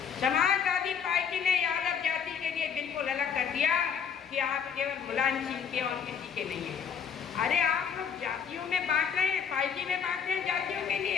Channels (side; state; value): right; quieter; 7.1 dB